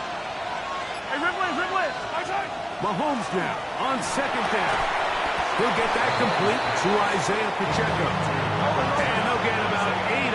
Mahomes now on second down. He'll get that complete to Isaiah Pacheco. And they'll get about 8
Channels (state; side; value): identical; both; correlation 1.00